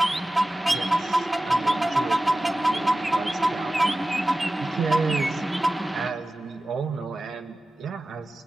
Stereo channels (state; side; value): normal; both; correlation 0.95